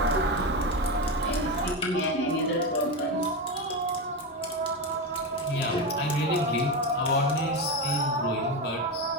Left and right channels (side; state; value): both; normal; correlation 0.15